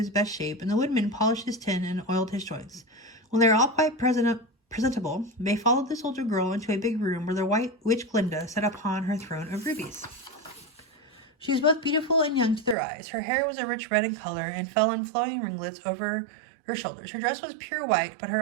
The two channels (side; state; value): left; drops out; at 12.8 s